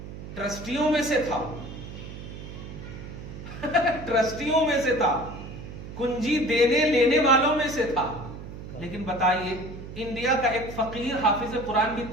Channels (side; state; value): right; noise; hum, 11 dB below the sound